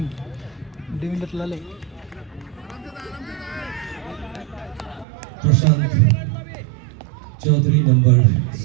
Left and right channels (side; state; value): left; drops out; at 5.1 s